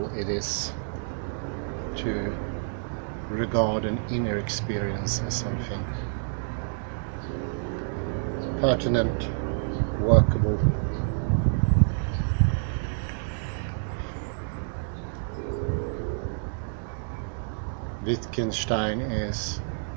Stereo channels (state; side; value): silent; left; digital silence